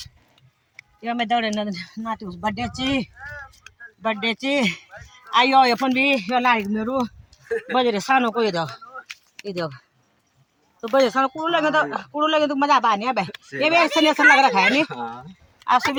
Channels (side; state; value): both; identical; correlation 1.00